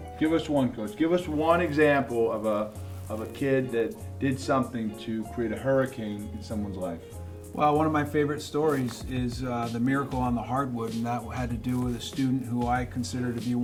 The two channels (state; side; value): identical; both; correlation 1.00